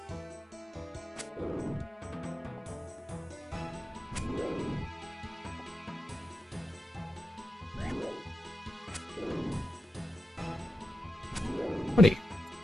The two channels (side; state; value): both; normal; correlation 0.90